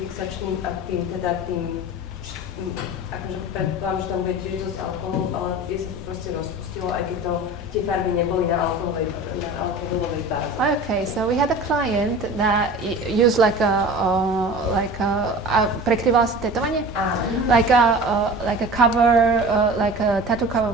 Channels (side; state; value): both; normal; correlation 0.37